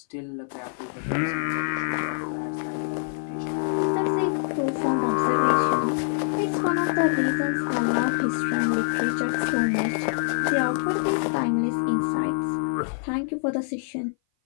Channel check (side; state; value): right; silent; 57 dB below the other